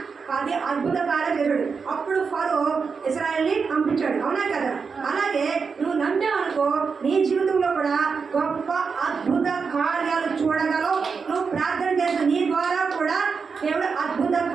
10 అద్భుత కార్యాలు చేశాడు. అప్పుడు ఫరో ఇశ్రాయేలుని పంపించాడు. అవునా కదా? అలాగే నువ్వు నమ్మావనుకో నీ జీవితంలో కూడా గొప్ప అద్భుత కార్యాలు చూడగలవు. నువ్వు ప్రార్థన చేసిన నీ ద్వారా కూడా దేవుడు అద్భుత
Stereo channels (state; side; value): quieter; left; 5.4 dB